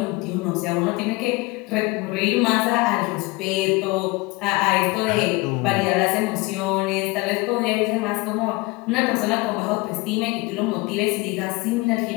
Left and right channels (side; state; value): right; quieter; 24.0 dB